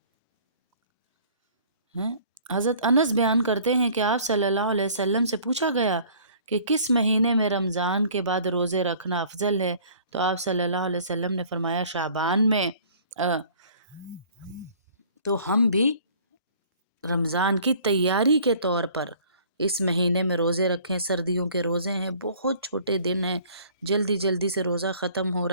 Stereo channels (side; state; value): both; inverted; correlation -0.53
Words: حضرت انس بیان کرتے ہیں کہ آپ صلی اللہ علیہ وسلم سے پوچھا گیا کہ کس مہینے میں رمضان کے بعد روزے رکھنا افضل ہے، تو آپ صلی اللہ علیہ وسلم نے فرمایا شعبان میں۔ تو ہم بھی رمضان کی تیاری کے طور پر اس مہینے میں روزے رکھیں۔ سردیوں کے روزے ہیں، بہت چھوٹے دن ہیں، جلدی جلدی سے روزہ ختم ہو